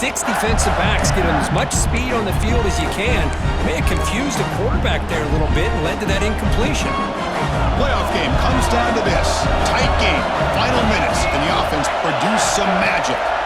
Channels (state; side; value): identical; both; correlation 1.00